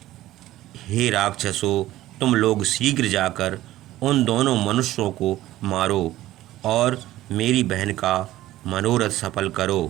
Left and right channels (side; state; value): left; quieter; 15.2 dB